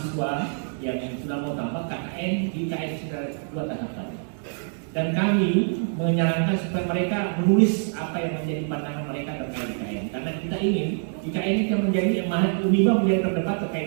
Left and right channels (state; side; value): silent; left; 61 dB below the other